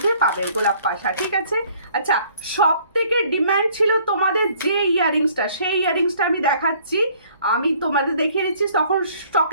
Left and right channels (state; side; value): inverted; both; correlation -0.58